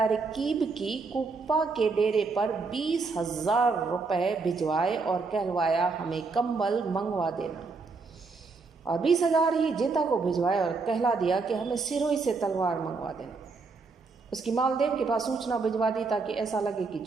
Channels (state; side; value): quieter; left; 4.3 dB